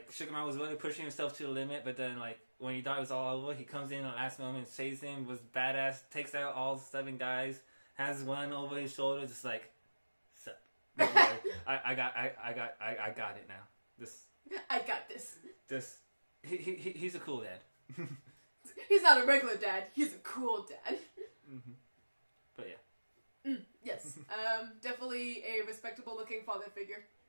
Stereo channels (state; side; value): inverted; both; correlation -1.00